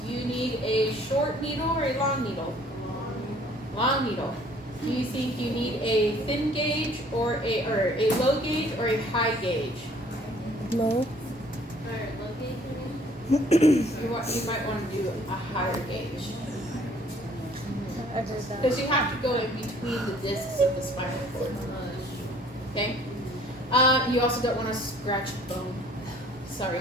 do you need a short needle or a long needle? Long needle. Do you think you need a thin gauge or a low gauge or a high gauge? Low. You might want to do a higher gauge. I've heard that. Because you have to go in between the discs of the spinal cord. Okay? You also don't want to scratch bone. Sorry.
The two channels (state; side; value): normal; both; correlation 0.56